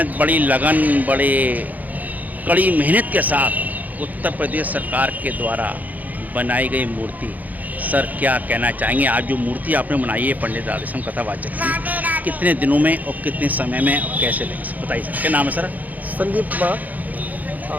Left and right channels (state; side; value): late; left; 0.081 ms